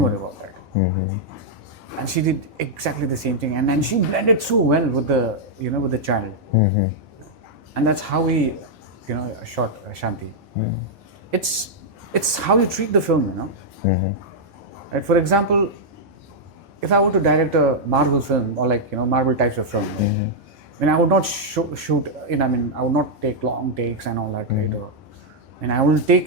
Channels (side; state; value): both; normal; correlation -0.05